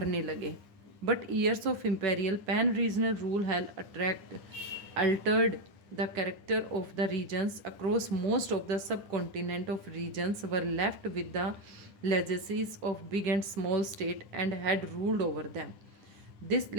लगे. But years of imperial pan regional rule have Altered the character of the regions across most of the subcontinent of regions were left with the legacies of big and small state and had ruled over them. This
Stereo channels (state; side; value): late; left; 9.9 ms